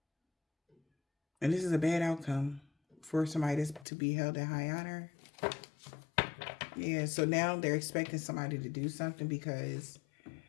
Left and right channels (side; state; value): right; drops out; at 3.9 s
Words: and this is a bad outcome for somebody to be held in high honor. Yeah, so now they're expecting somebody to do something because